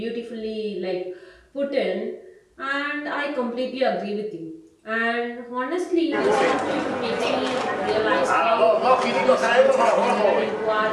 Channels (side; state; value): both; identical; correlation 1.00